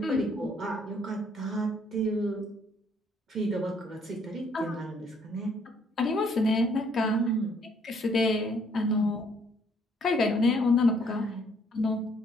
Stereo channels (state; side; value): normal; both; correlation 0.65